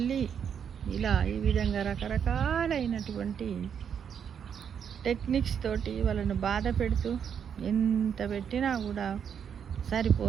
ఇలా ఈ విధంగా రకరకాలైనటువంటి టెక్నిక్స్ తోటి వాళ్ళను బాధ పెడుతూ ఎంత పెట్టినా కూడా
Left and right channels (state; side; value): quieter; left; 7.8 dB